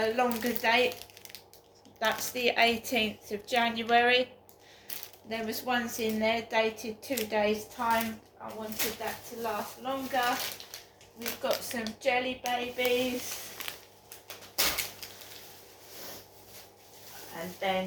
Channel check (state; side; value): identical; both; correlation 1.00